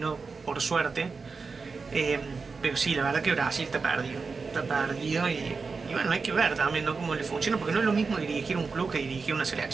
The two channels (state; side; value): quieter; left; 4.7 dB